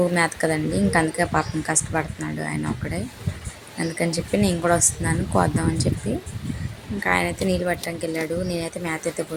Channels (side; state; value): both; identical; correlation 1.00